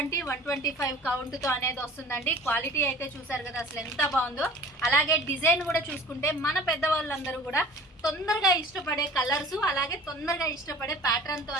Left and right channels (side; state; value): both; normal; correlation 0.45